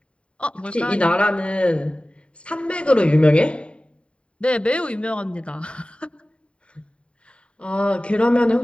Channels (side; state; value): right; late; 0.058 ms